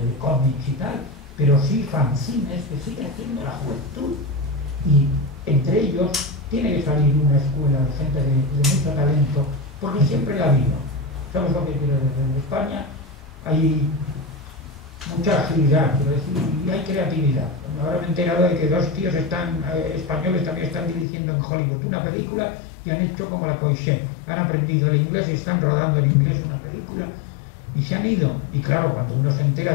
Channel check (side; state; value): right; drops out; at 21.1 s